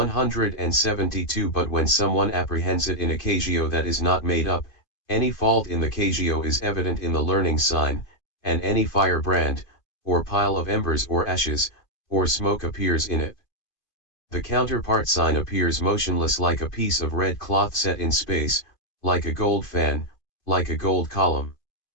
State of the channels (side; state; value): right; late; 2.5 ms